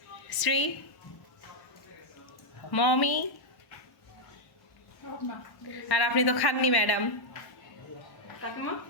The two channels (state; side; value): late; right; 1.0 ms